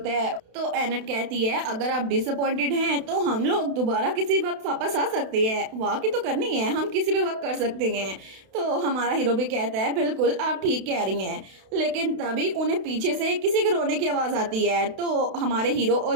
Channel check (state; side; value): late; left; 32 ms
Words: है। तो एनेट कहती है अगर आप डिसअपॉइंटेड हैं तो हम लोग दोबारा किसी वक्त वापस आ सकते हैं, वॉक ही तो करनी है, हम किसी भी वक्त कर सकते हैं। तो हमारा हीरो भी कहता है बिल्कुल आप ठीक कह रही हैं। लेकिन तभी उन्हें पीछे से किसी के रोने की आवाज आती है। तो हमारे हीरो